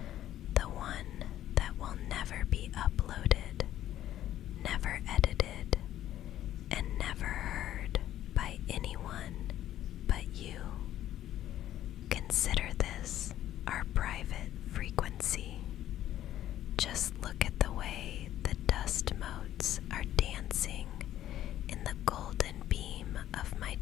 the one that will never be uploaded, never edited, and never heard by anyone but you. Consider this our private frequency. Just look at the way the dust motes are dancing in the golden beam of my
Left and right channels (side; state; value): right; quieter; 12.5 dB